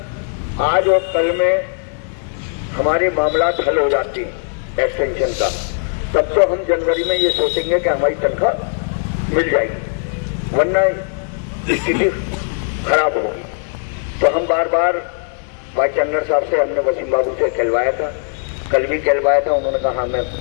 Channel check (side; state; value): right; silent; 61 dB below the other